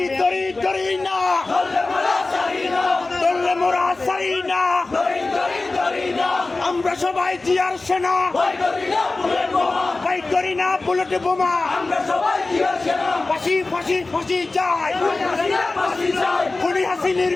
দড়ি দড়ি না ধরলে মোরা সারি না, আমরা সবাই জিয়ার সেনা, ভাই করি না বুলেট বোমা, ফাঁসি ফাঁসি ফাঁসি চাই, খুনি হাসিনার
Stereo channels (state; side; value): quieter; right; 3.4 dB